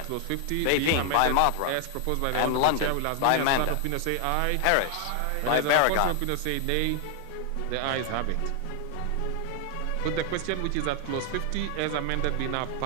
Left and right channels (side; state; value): both; different; correlation 0.00